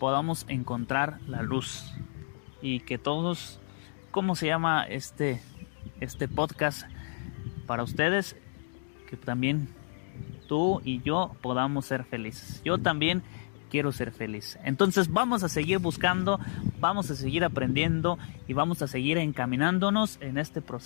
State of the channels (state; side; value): silent; right; digital silence